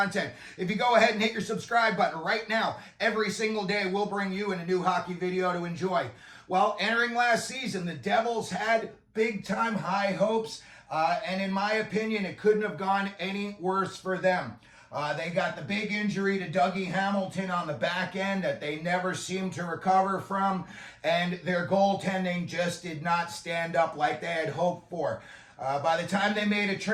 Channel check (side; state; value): both; identical; correlation 1.00